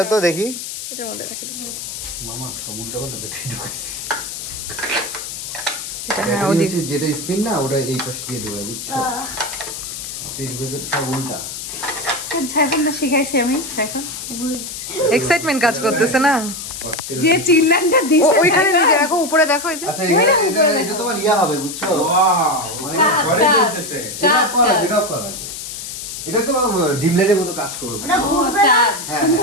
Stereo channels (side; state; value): left; noise; hiss, 8 dB below the sound